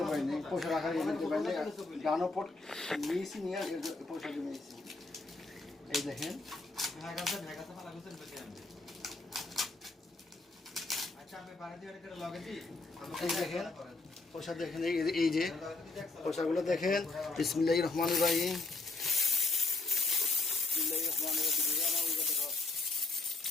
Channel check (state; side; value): quieter; right; 3.4 dB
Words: পারি নাই, পয়সা রাখার ইয়ে কিনতে পারি নাই। গানপট নিয়েছি, নিয়ে পয়সা জমিয়েছি। এই দেখেন পয়সা দেখেন, এই যে পয়সাগুলো দেখেন। বিসমিল্লাহির রহমানির রহিম।